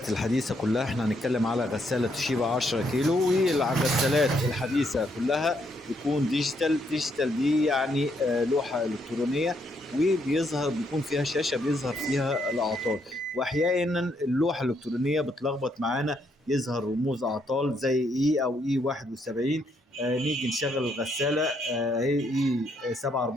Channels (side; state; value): both; normal; correlation 0.74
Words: الحديثة كلها احنا هنتكلم على غسالة توشيبا 10 كيلو، والغسالات الحديثة كلها بيكون ديجيتال دي يعني لوحة إلكترونية، بيكون فيها شاشة بيظهر فيها الأعطال. وأحيانا اللوحة الإلكترونية بتلخبط معانا، يظهر رموز أعطال زي إي أو إي 71. نيجي نشغل الغسالة هي إي